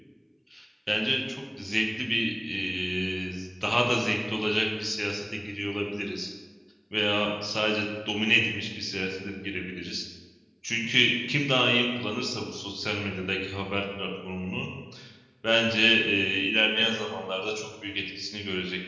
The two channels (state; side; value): identical; both; correlation 1.00